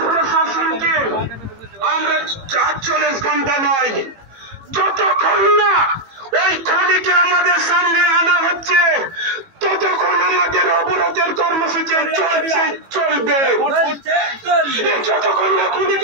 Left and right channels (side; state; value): left; late; 18 ms